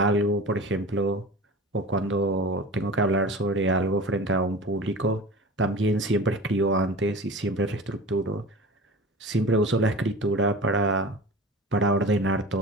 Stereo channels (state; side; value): normal; both; correlation 0.35